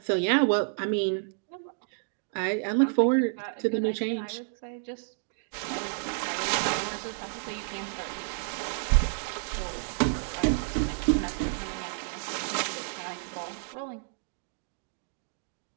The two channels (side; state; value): left; silent; digital silence